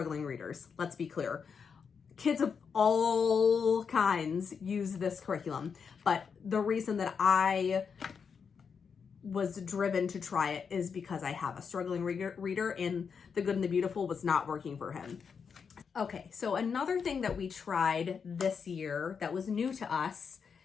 readers, let's be clear. Kids of all kinds use this curriculum. But the reason that I was driven to try it is because I have a struggling reader, and the Good and the Beautiful was not working for him. Okay, so another thing that we tried this year that was new to us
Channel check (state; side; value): quieter; right; 6.2 dB